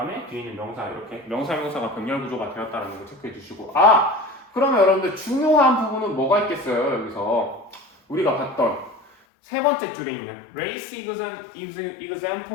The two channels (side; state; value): right; drops out; at 9.1 s